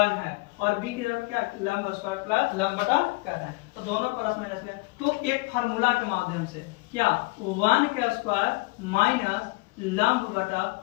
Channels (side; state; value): right; quieter; 25.8 dB